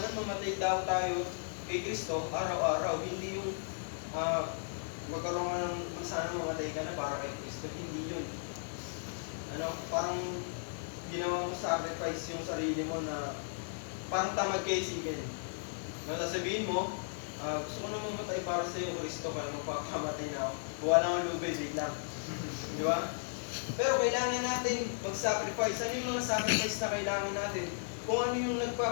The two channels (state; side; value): silent; right; digital silence